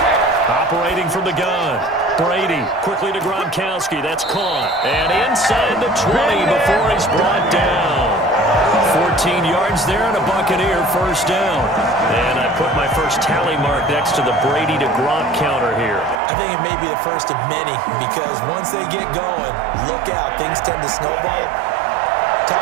Operating from the gun. Brady quickly to Gronkowski. That's caught. And inside the 20 before he's brought down. 14 yards there and a Buccaneer first down. And I put my first tally mark next to the Brady to Gronk counter here. I think it may be the first of many because once they get going, look out. Things tend to snowball.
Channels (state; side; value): drops out; left; at 16.2 s